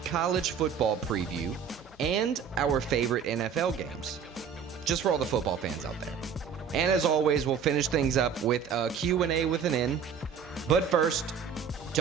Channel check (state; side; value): quieter; left; 6.9 dB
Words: college football preview and our favorite NFL games. Just for all the football fans out there. And as always, we'll finish things up with a Q&A with an N. But first,